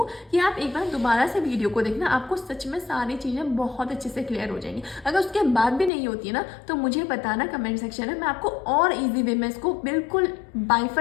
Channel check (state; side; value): drops out; right; at 5.9 s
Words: कि आप एक बार दोबारा से वीडियो को देखना, आपको सच में सारी चीज़ें बहुत अच्छे से क्लियर हो जाएंगी। अगर उसके बाद भी नहीं होती है ना तो मुझे बताना कमेंट सेक्शन में, मैं आपको और ईजी वे में इसको बिल्कुल